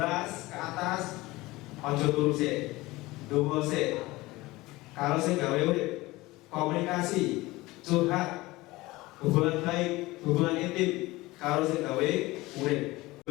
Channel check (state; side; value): quieter; right; 20.1 dB